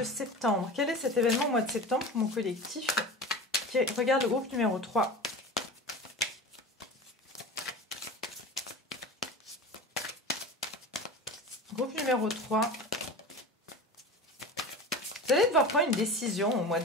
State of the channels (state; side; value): normal; both; correlation 0.32